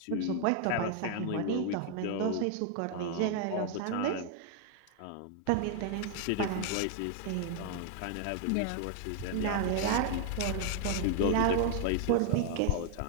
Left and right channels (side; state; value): both; different; correlation 0.00